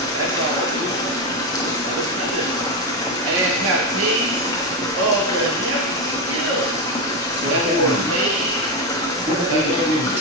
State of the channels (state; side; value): normal; both; correlation 0.11